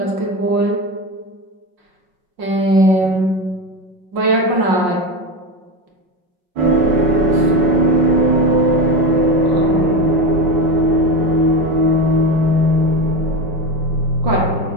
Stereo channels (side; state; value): left; late; 5.4 ms